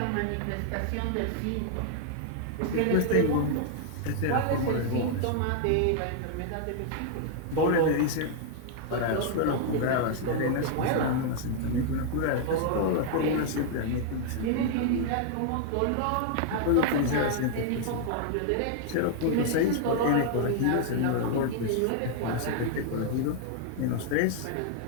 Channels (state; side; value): different; both; correlation 0.00